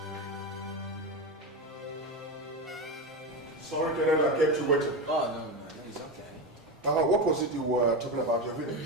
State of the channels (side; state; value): both; normal; correlation 0.17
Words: Sorry, Kenneth, I kept you waiting. Oh, no, it's okay. What was it you were talking about your